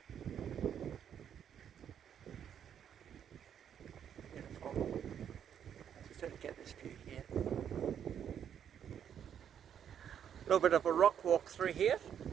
Beautiful. Just to get this view here. A little bit of a rock walk through here,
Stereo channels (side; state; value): left; quieter; 8.8 dB